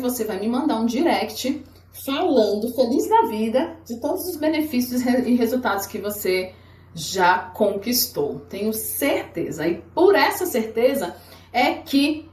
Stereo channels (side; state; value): both; identical; correlation 1.00